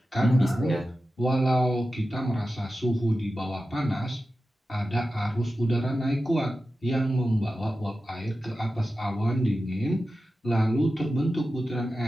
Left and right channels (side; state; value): both; normal; correlation 0.93